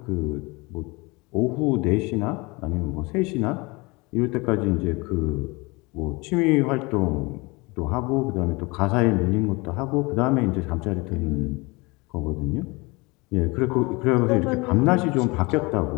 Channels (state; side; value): quieter; right; 25.6 dB